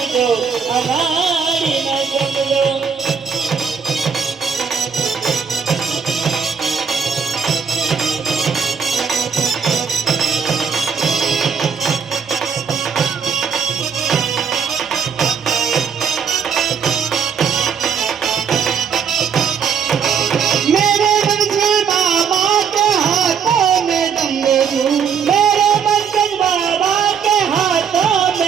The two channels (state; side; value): quieter; left; 6.6 dB